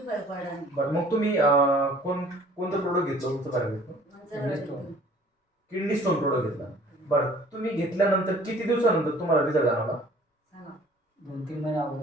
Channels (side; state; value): both; normal; correlation 0.52